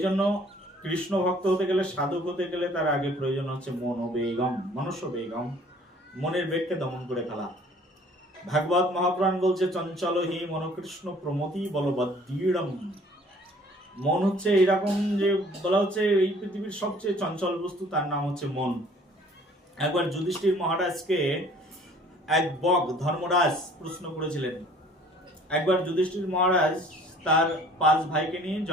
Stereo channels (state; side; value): normal; both; correlation 0.54